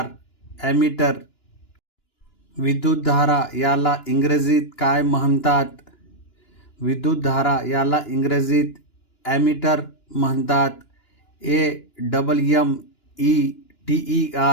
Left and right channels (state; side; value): late; right; 2.9 ms